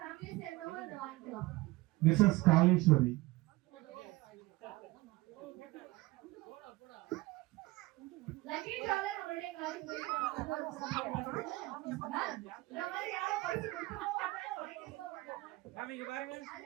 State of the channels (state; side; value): quieter; left; 20.6 dB